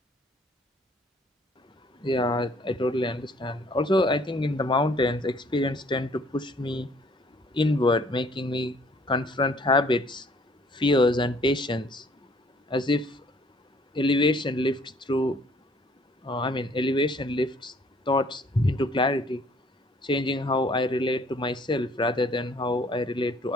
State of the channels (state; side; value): normal; both; correlation 0.60